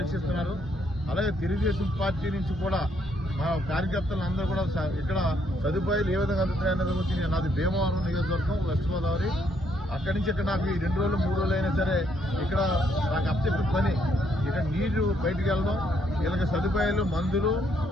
అలాగే తెలుగుదేశం పార్టీ నుంచి కూడా మా కార్యకర్తలు అందరూ కూడా ఇక్కడ సదుపాయాలు ఏ విధంగా అందుతున్నాయన్నది గురించి నాది భీమవరం నియోజకవర్గం, వెస్ట్ గోదావరి. అక్కడి నుంచి ఇక్కడ నాకు ఈ 2 రోజులు 3 రోజులు అయినా సరే ఇక్కడ నాకు అప్పచెప్పిన పని ఇక్కడ నీరు బయటకు వెళ్ళడం, వీళ్ళకి సదుపాయాలు, మందులు,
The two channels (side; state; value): both; normal; correlation 0.72